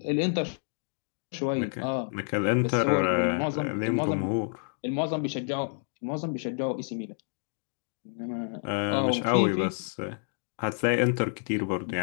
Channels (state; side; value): silent; right; digital silence